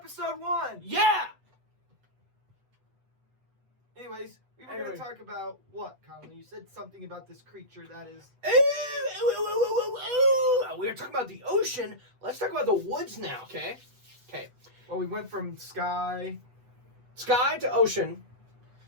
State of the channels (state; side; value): late; left; 8.0 ms